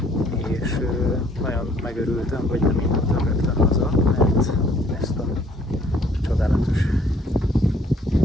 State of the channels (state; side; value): normal; both; correlation 0.61